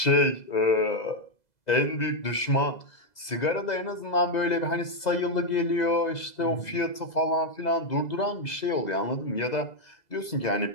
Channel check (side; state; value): right; late; 2.0 ms